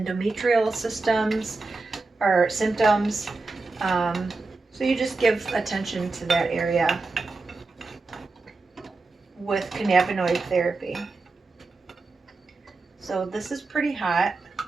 symptoms. So you just give attention to that area with cannabinoid therapy. So this is pretty hot,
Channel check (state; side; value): quieter; left; 3.6 dB